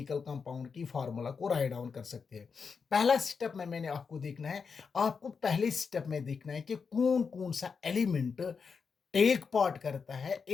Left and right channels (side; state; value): right; quieter; 5.6 dB